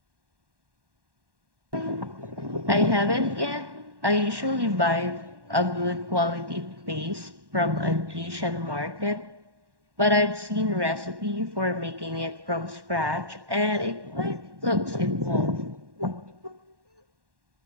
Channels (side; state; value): left; late; 1.1 ms